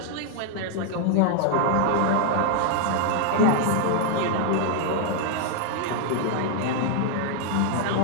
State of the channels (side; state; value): both; different; correlation 0.00